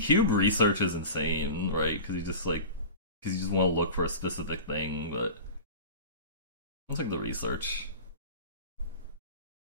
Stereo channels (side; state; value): both; inverted; correlation -0.34